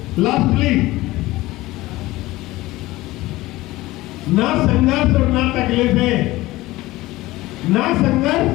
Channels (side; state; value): right; quieter; 18.5 dB